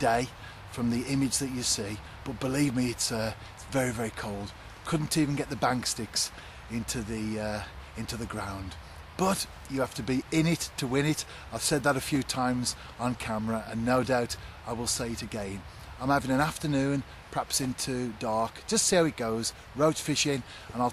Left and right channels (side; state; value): both; identical; correlation 1.00